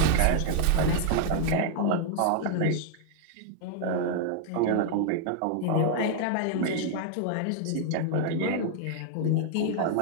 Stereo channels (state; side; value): different; both; correlation 0.00